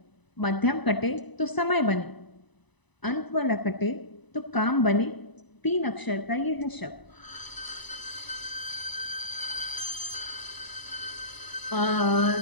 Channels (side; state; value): right; late; 1.0 ms